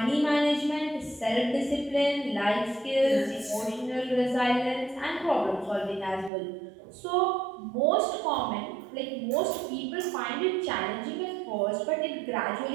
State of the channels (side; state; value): left; drops out; at 6.3 s